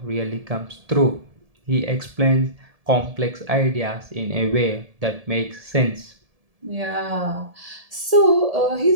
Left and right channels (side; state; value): left; late; 1.7 ms